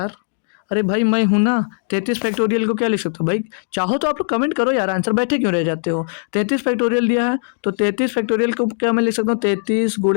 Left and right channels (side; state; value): right; silent; digital silence